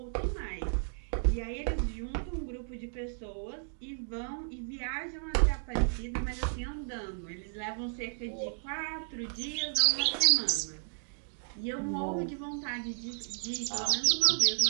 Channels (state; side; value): silent; left; digital silence